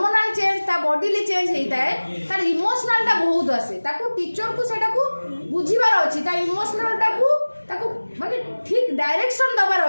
ଚେଞ୍ଜ ତା ବଡିଲି ଚେଞ୍ଜ ହେଇଥାଏ ତାର ଇମୋସନାଲ୍ଟା ବହୁତ ଆସେ ତାକୁ ଟିଚରକୁ ସେଇଟାକୁ ବୁଝିବାର ଅଛି ତା ଇମୋସନାଲ୍ଟାକୁ ତାକୁ ମାନେ ଠିକ୍ ଡାଇରେକ୍ସନ୍ ଦେବାର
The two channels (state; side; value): inverted; both; correlation -1.00